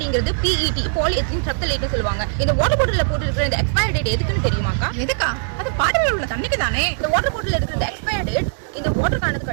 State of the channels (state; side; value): silent; left; digital silence